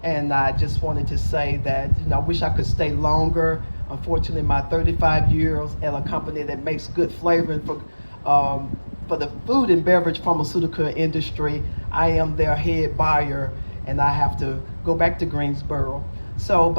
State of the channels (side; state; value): both; inverted; correlation -1.00